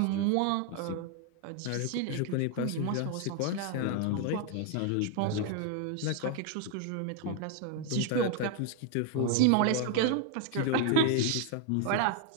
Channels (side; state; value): both; different; correlation 0.00